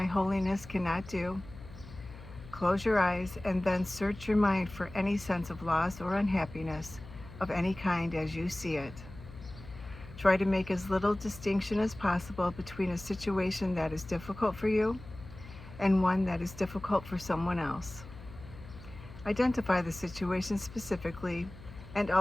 holiness cannot do. Close your eyes and then search your mind for any sense of loss or unhappiness of any kind as you see it. Try to make as little distinction as possible between a situation that is difficult for you and one that is difficult for someone else. Identify the situation specifically and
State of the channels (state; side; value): noise; left; hum, 16 dB below the sound